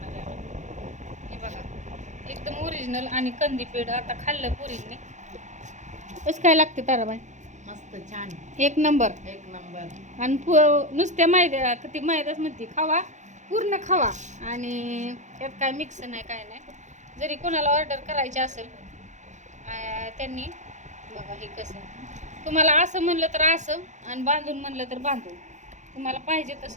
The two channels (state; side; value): late; left; 0.35 ms